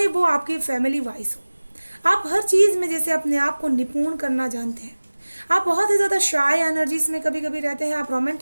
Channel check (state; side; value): inverted; both; correlation -1.00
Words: वो आपके फैमिली वाइज हो। आप हर चीज़ में जैसे अपने आप को निपुण करना जानते हैं। आप बहुत ही ज़्यादा शाय एनर्जीज में कभी कभी रहते हैं। आप